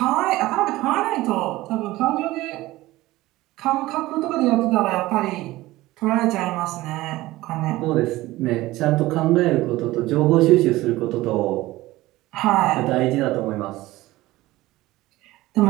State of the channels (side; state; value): left; quieter; 17.9 dB